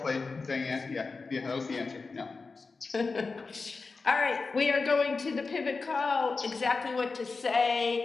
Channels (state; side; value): quieter; right; 4.2 dB